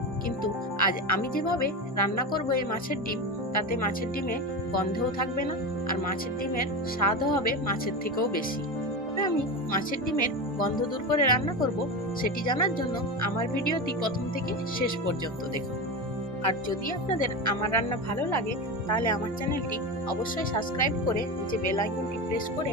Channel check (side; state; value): both; normal; correlation 0.22